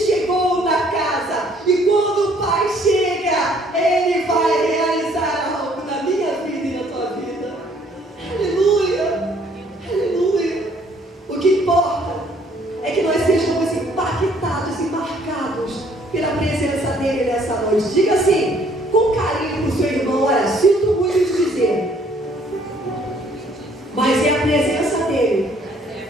na casa. E quando o Pai chega, ele vai realizar algo na minha vida e na tua vida. Aleluia! Aleluia! O que importa é que nós sejamos impactados e marcados pela presença dele nessa noite. Diga assim, com carinho para o seu irmão: olha, sinto muito te dizer, mas é a presença dele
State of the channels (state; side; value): normal; both; correlation 0.62